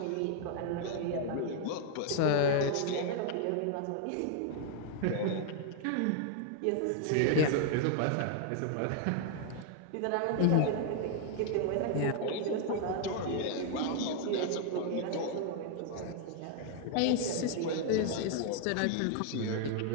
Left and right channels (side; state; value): both; different; correlation 0.00